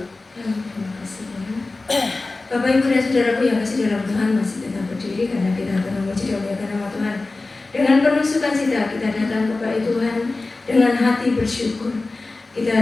Terima kasih ya. Bapak Ibu dan Saudaraku yang kasih dalam Tuhan, masih tetap berdiri karena kita akan memuji dan memuliakan nama Tuhan. Dengan penuh sukacita kita datang kepada Tuhan dengan hati bersyukur.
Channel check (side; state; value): right; quieter; 3.4 dB